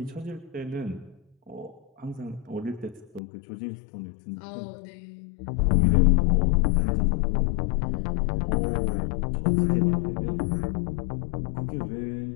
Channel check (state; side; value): drops out; right; at 3.2 s